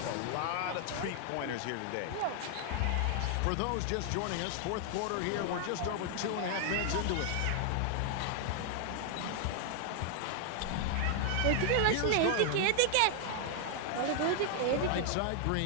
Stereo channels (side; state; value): both; different; correlation 0.00